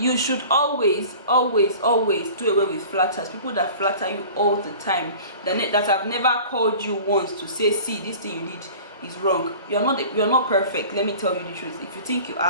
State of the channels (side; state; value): both; inverted; correlation -0.42